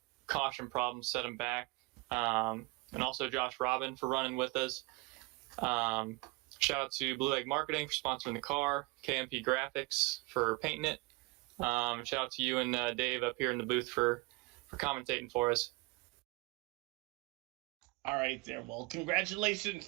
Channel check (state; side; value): quieter; left; 24.5 dB